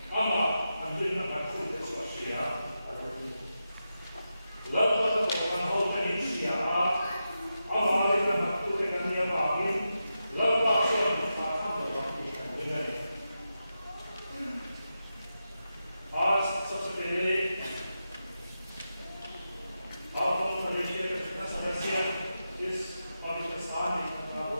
Ama ang din na ako sa siya. Lama na ko ang hotel siya. Ama rin na ako sa kanya bagin. Lama sa आज सबसे पहले आप मलेशिया का जितना समस्या इस पवित्र स्थान में इकट्ठा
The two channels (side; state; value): both; inverted; correlation -0.89